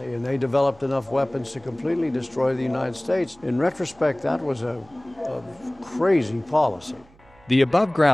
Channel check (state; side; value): noise; right; hum, 28 dB below the sound